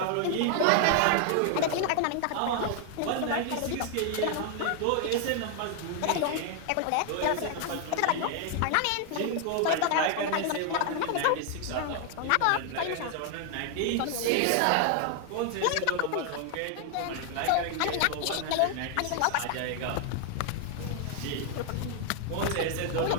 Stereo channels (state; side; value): different; both; correlation 0.00